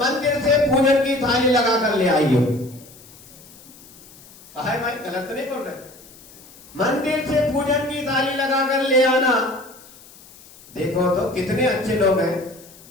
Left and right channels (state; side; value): noise; left; hiss, 22 dB below the sound